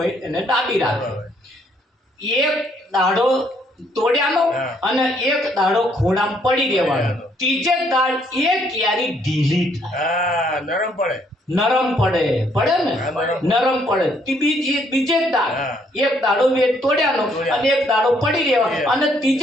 એને દાબી રાખે. એક દાડો તોડ્યાનો અને એક દાડો ખૂણામાં પડી દેવાનો. ત્રીજે દાડ એ કેરી ઢીલી થાય, નરમ પડે ને, નરમ પડે. બીજે દાડ એક દાડો તોડ્યાનો અને એક દાડો પડી રહેવાનો અને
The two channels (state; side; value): normal; both; correlation 0.68